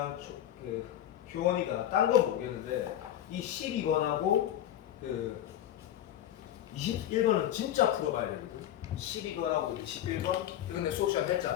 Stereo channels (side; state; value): right; quieter; 11.9 dB